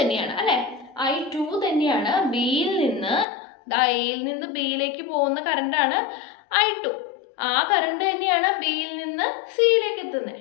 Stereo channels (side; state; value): right; drops out; at 3.2 s